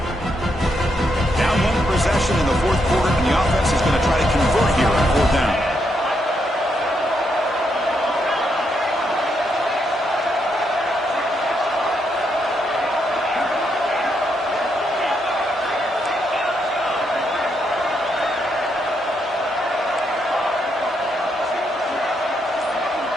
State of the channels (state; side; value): normal; both; correlation 0.78